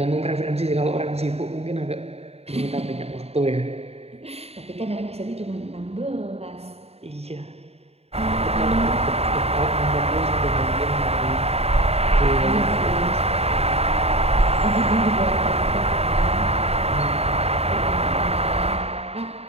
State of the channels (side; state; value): left; late; 0.30 ms